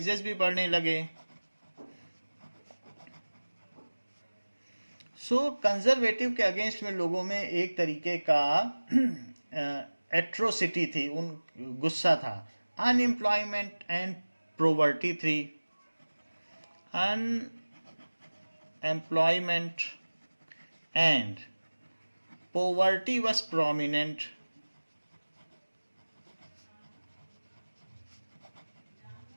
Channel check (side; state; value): both; inverted; correlation -1.00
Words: भी बढ़ने लगे. सो कंजर्वेटिव के अगेंस्ट में लोगों में एक तरीके का एट्रोसिटी थी, गुस्सा था. अनएम्प्लॉयमेंट एंड पॉवर्टी थी. Unemployment and poverty was prominent.